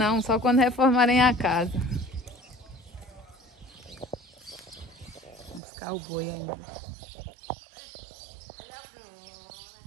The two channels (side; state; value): left; drops out; at 5.6 s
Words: só quando reformarem a casa. Vamos buscar o boi ainda.